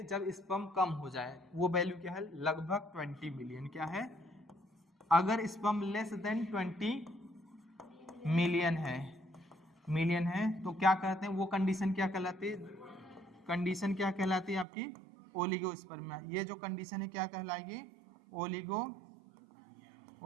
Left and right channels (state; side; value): drops out; left; at 14.7 s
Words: जब स्पर्म कम हो जाए, वो वैल्यू क्या है? लगभग 20 मिलियन। क्या है? अगर स्पर्म लेस देन 20 मिलियन है तो क्या कहते हैं? वो कंडीशन क्या कहलाती है? कंडीशन क्या कहलाती है आपकी? ओलिगोस्पर्मिया। ये जो कंडीशन है क्या कहलाएगी?